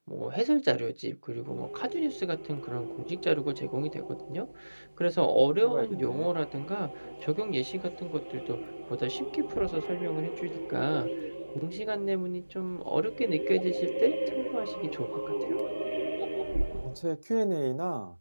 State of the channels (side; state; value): both; inverted; correlation -1.00